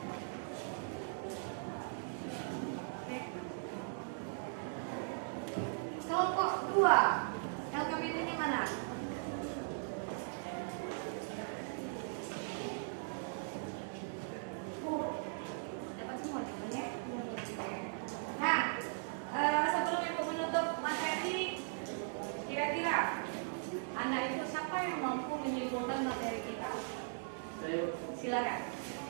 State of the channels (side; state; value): left; silent; digital silence